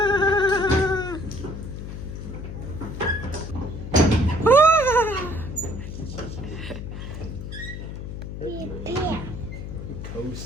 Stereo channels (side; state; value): left; noise; hum, 8 dB below the sound